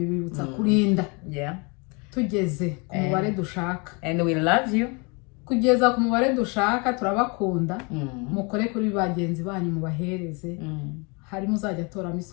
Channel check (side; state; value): right; quieter; 31.1 dB